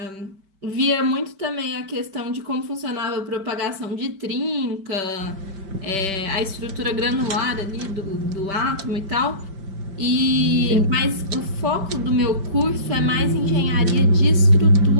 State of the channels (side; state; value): left; late; 5.1 ms